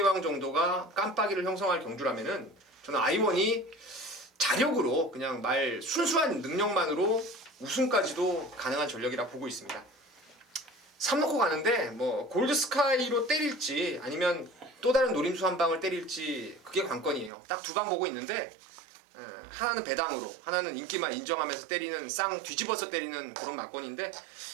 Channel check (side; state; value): left; drops out; at 17.3 s